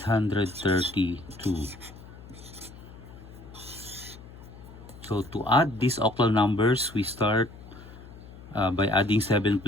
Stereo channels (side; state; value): left; noise; hum, 17 dB below the sound